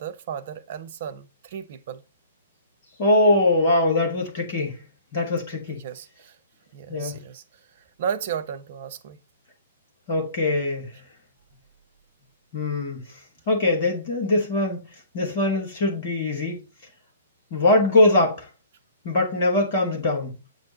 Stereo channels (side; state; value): both; inverted; correlation -0.51